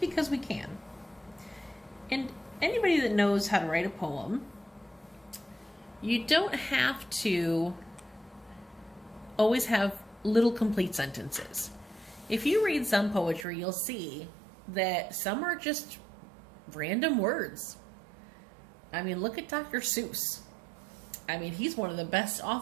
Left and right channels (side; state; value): left; drops out; at 13.5 s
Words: we can. And anybody that knows how to write a poem, you don't have to always have little complete sentences. If you read some poetry, you'll see that some are just random words. I mean, look at Dr. Seuss. I mean, he's one of the best